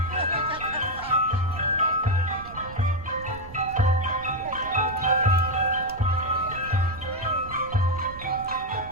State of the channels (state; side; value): noise; right; rumble, 15 dB below the sound